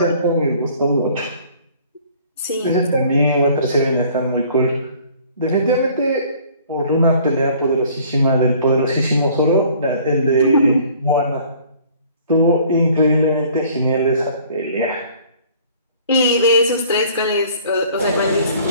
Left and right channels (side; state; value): both; inverted; correlation -0.54